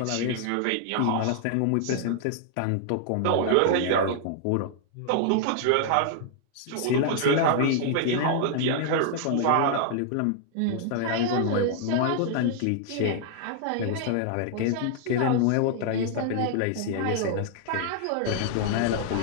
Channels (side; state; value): both; different; correlation -0.01